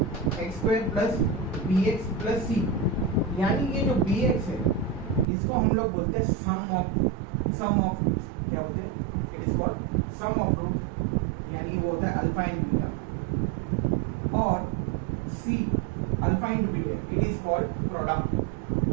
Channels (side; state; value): left; drops out; at 5.2 s